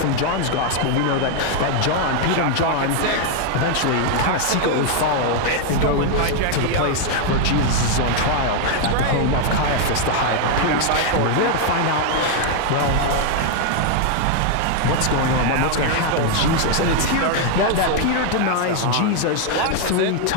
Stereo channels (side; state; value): both; different; correlation 0.00